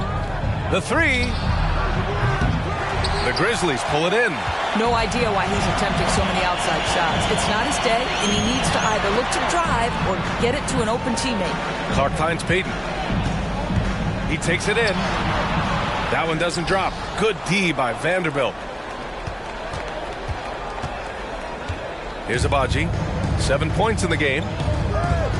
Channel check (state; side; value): identical; both; correlation 1.00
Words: The 3. The Grizzlies pull it in. No idea why he's attempting so many outside shots. It's not his day, and he needs to either look to drive or get it to an open teammate. Clark finds Payton. He takes it in. That one doesn't drop. Good D by Vanderbilt. Here's Baaaaby. 7 points in the game.